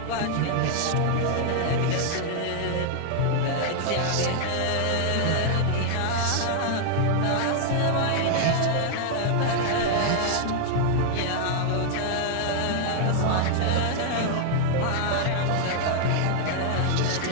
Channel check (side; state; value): both; different; correlation 0.00